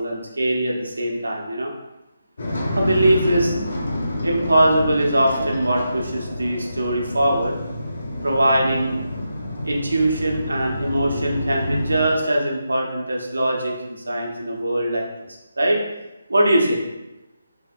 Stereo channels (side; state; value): both; inverted; correlation -0.86